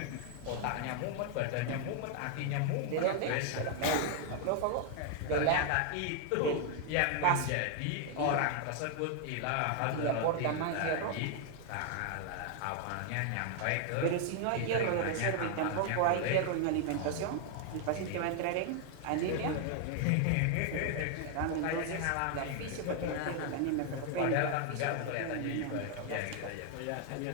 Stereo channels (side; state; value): both; different; correlation 0.00